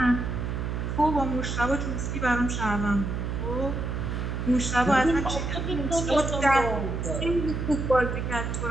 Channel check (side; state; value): right; noise; hum, 3 dB below the sound